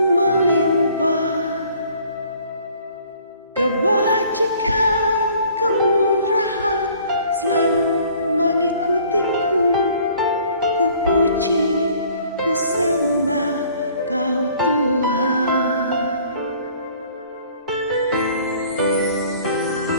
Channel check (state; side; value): inverted; both; correlation -0.55